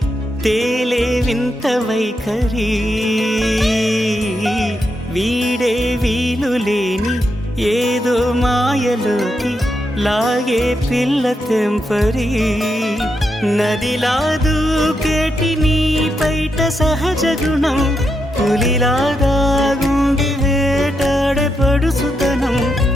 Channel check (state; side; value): normal; both; correlation 0.83